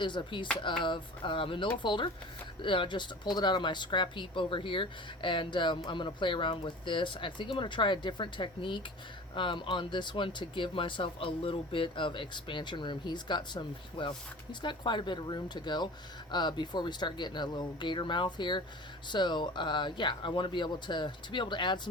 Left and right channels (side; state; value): both; normal; correlation 0.39